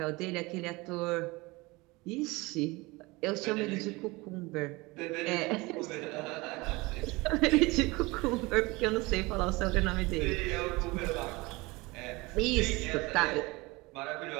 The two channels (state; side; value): quieter; left; 23.3 dB